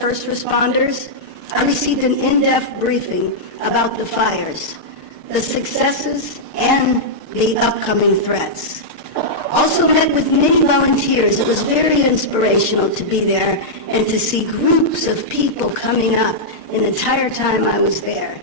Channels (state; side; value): late; right; 6.6 ms